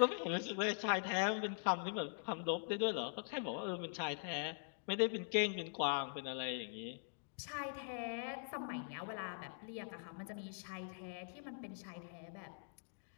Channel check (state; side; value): silent; right; digital silence